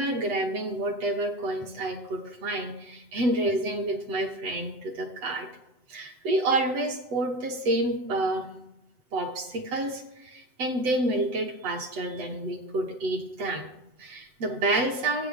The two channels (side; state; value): left; late; 7.9 ms